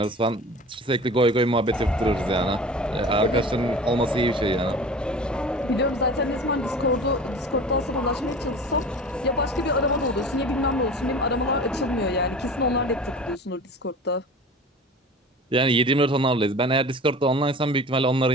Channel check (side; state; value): both; normal; correlation 0.38